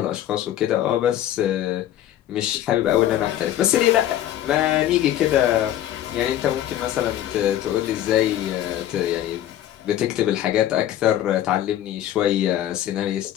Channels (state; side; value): quieter; right; 12.3 dB